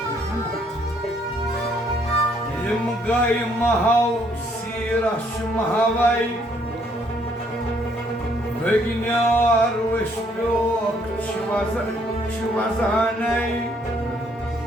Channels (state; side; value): normal; both; correlation 0.67